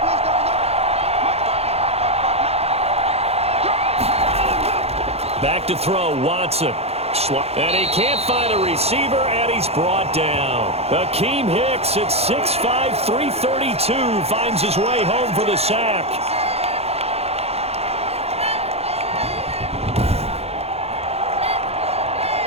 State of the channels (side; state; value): left; late; 0.30 ms